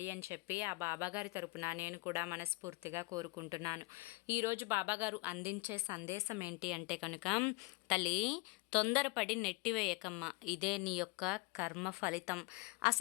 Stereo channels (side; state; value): right; quieter; 27.2 dB